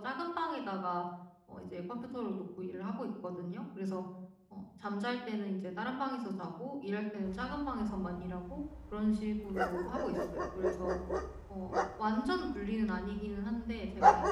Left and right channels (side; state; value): both; identical; correlation 1.00